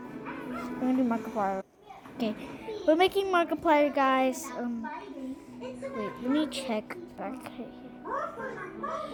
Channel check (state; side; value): identical; both; correlation 1.00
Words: Okay, we're making Markiplier, guys. Wait, let me check back here.